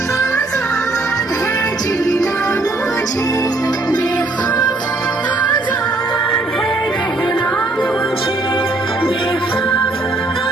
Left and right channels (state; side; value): quieter; left; 3.1 dB